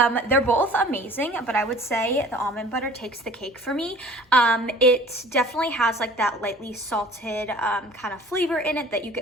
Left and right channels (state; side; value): normal; both; correlation 0.47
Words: both amazing, but I would say the almond butter takes the cake for me. It definitely has like that lightly salted kind of flavor in it that you